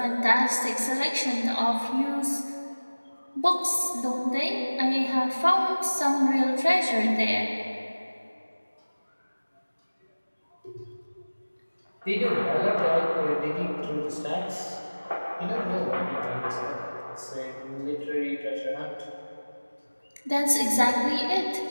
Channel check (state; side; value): inverted; both; correlation -1.00